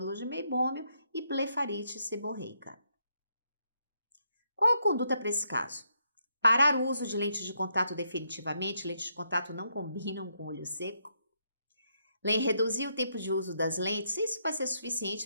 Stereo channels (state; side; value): inverted; both; correlation -0.78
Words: de meibômio e blefarite seborreica. Qual a conduta para esse caso? Parar o uso de lentes de contato definitivamente, lentes de contato não combinam com olho seco. Reduzir o tempo de uso das lentes, isso vai ser